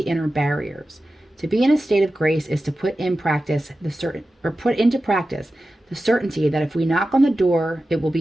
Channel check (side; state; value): both; normal; correlation 0.93